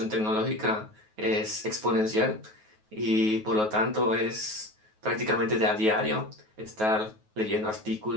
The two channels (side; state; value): left; late; 9.3 ms